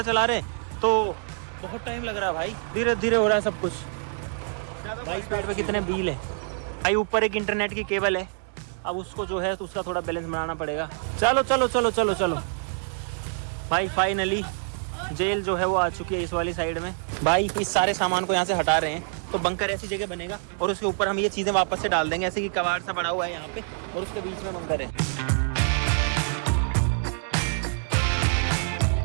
चला रहे हैं, तो बहुत टाइम लग रहा है भाई, धीरे धीरे हो रहा है सब कुछ। भाई पेड़ पे कितने बिल है भाई, ऊपर एक इंटरनेट की केबल है, अब उसको जो है तो उसका थोड़ा बैलेंस बनाना पड़ेगा। चलो चलो चलो चलो चलो भाई, फाइनली जेल जो है वो आ चुकी है इस वाली साइड में। भाई इस सारे सामान को यहाँ से हटा रहे हैं तो बंकर ऐसी जगह बनेगा और उसके ऊपर हम ये चीजें वापस से डाल देंगे, ऐसे कि कबाड़ सा बड़ा हुआ है यहाँ पे और उसके बीच में बंकर है।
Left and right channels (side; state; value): left; silent; 61 dB below the other